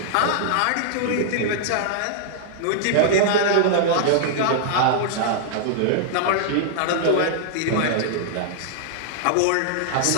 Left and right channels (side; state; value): both; different; correlation -0.01